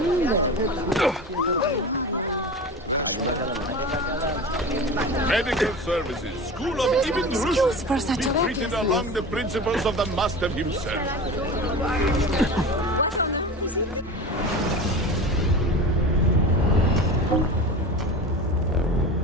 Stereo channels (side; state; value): both; normal; correlation 0.31